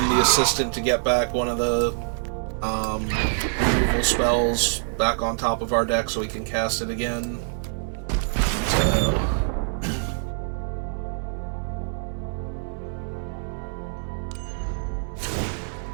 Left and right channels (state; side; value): silent; left; 62 dB below the other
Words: the assistant to get back one of the removal spells back on top of our deck so we can cast it again. So...